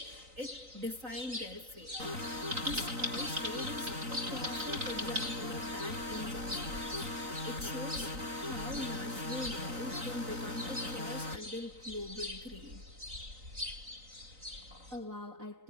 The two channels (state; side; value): late; left; 3.9 ms